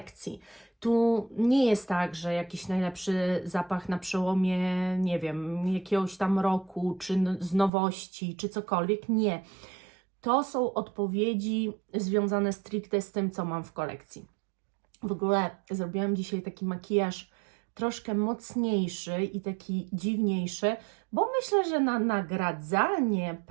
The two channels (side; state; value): left; drops out; at 7.7 s